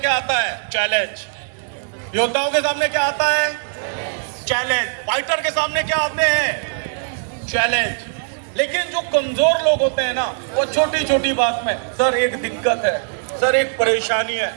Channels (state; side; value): silent; left; 66 dB below the other